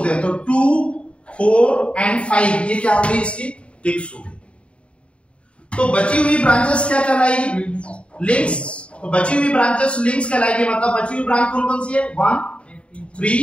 हैं। तो 2, 4 एंड 5 ये क्या होगी? इसकी ट्विक्स होगी। तो बची हुई ब्रांचेस क्या कहलाएगी? लिंक्स। तो बची हुई ब्रांचेस लिंक्स कहलाएगी। मतलब बची हुई ब्रांच कौन कौन सी है? 1,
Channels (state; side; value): late; right; 0.060 ms